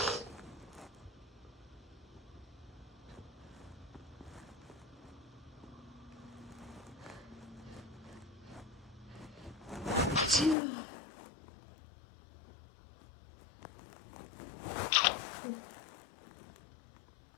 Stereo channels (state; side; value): drops out; right; at 10.6 s